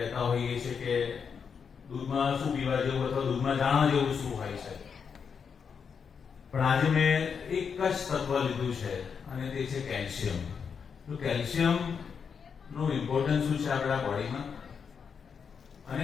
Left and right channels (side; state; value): right; quieter; 6.4 dB